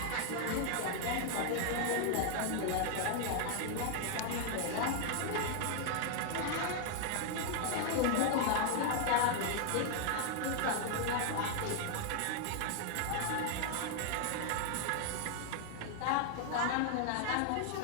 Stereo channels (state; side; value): different; both; correlation 0.00